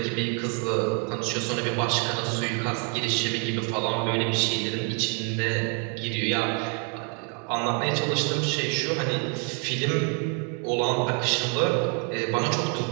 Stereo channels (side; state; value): left; quieter; 38.3 dB